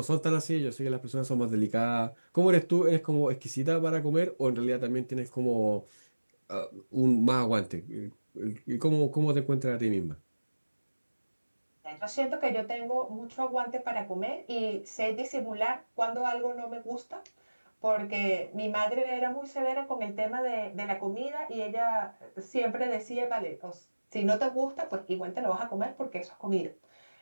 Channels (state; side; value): inverted; both; correlation -1.00